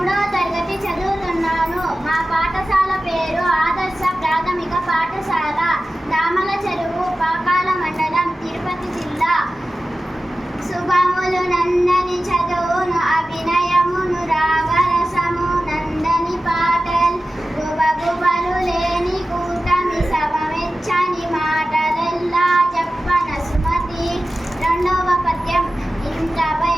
ప్రాథమిక పాఠశాల దామల చెరువు పాకాల మండలం తిరుపతి జిల్లా. శుభములు నందని చదువును అభినయమును రాగరసము నందని పాటల్ గుబగుబలు లేని కూటమి సభమెచ్చని మాటలెల్లా చెప్పన సుమతి. రెండవ పద్యం. ఇంత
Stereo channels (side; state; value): both; normal; correlation 0.95